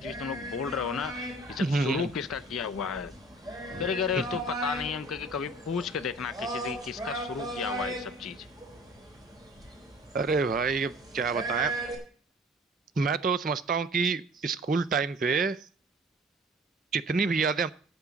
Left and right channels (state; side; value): normal; both; correlation 0.48